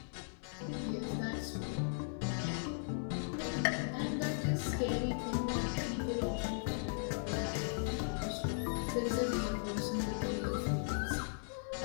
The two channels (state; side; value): silent; right; 53 dB below the other